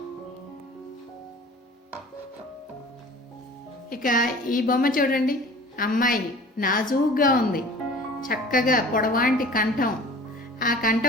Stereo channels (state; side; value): normal; both; correlation 0.44